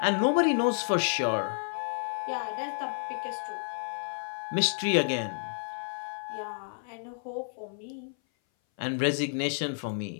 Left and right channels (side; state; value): right; silent; 57 dB below the other